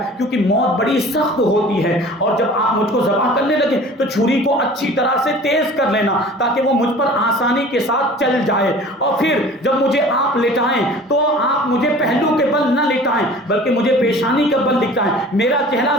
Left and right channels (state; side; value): normal; both; correlation 0.44